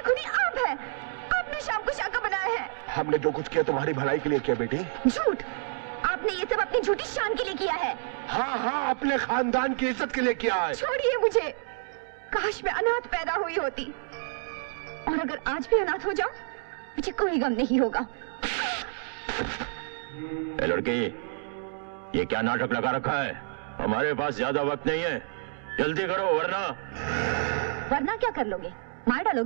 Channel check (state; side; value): silent; left; digital silence